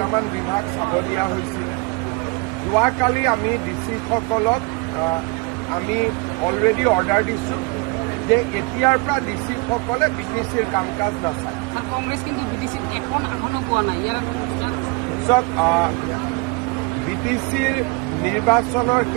বিভাগ চাব দিয়া হৈছিল। যোৱাকালি আমি ডিচিসকলক আমি অলৰেডি অৰ্ডাৰ দিছোঁ যে এতিয়াৰ পৰা ডিচিসকলে বিটিচিৰ কাম কাজ নাচায়। বিটিচিৰ নিৰ্বাচনৰ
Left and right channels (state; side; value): quieter; left; 27.5 dB